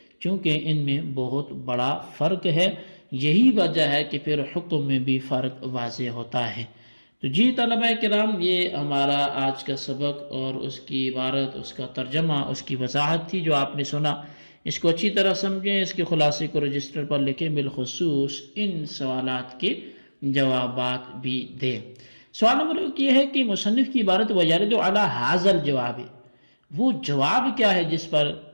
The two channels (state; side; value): inverted; both; correlation -1.00